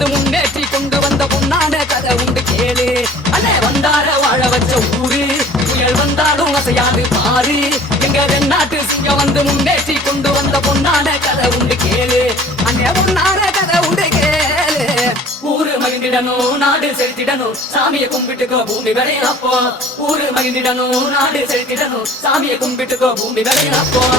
முன்னேற்றி கொண்டு வந்த பொன்னான கதை உண்டு கேளு. அண்ணே வந்தார வாழ வச்ச ஊரு, புயல் வந்தாலும் அசையாது பாரு. எங்க தென்னாட்டு சிங்கம் வந்து முன்னேற்றி கொண்டு வந்த பொன்னான கதை உண்டு கேளு. அண்ணே பொன்னான கதை உண்டு கேளு. ஊரு மகிழ்ந்திடணும், நாடு செலுத்திடணும், சாமியை கும்பிட்டுக்கோ பூமி விளையாப்போ. ஊரு மகிழ்ந்திடணும், நாடு செலுத்திடணும், சாமியை கும்பிட்டுக்கோ பூமி விளையாப்போ.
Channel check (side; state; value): both; normal; correlation 0.48